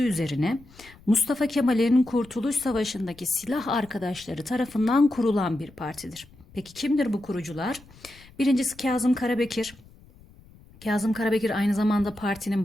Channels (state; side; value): noise; left; rumble, 24 dB below the sound